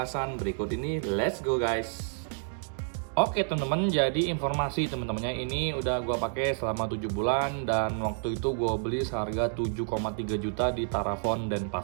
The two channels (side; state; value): left; silent; digital silence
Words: berikut ini. Let's go guys. Oke teman-teman, jadi informasi teman-temannya ini udah gue pakai selama 7 bulan dan waktu itu gue beli seharga 7,3 juta di Tarafon dan